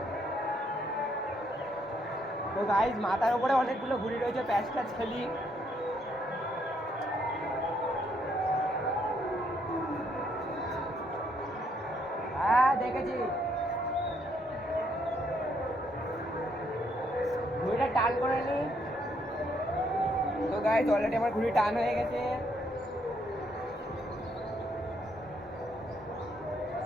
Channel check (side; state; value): both; normal; correlation 0.72